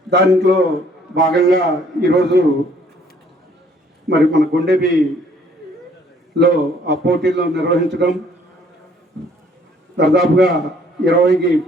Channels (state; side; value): normal; both; correlation 0.61